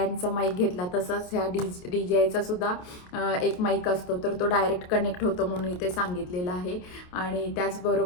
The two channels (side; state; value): right; late; 28 ms